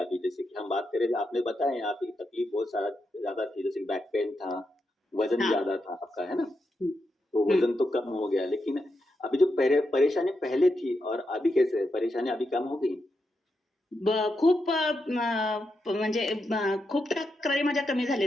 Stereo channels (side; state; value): both; normal; correlation 0.85